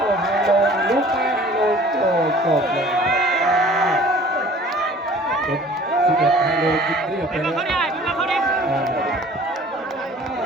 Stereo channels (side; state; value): both; normal; correlation 0.49